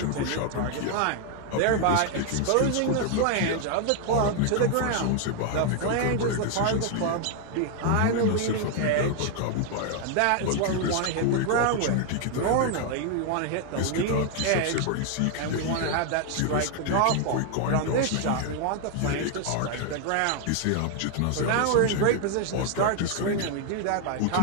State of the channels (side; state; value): both; different; correlation 0.00